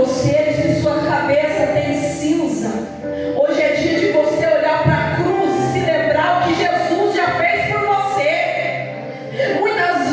se sua cabeça tem cinza, hoje é dia de você olhar para a cruz e se lembrar o que Jesus já fez por você.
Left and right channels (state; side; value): identical; both; correlation 1.00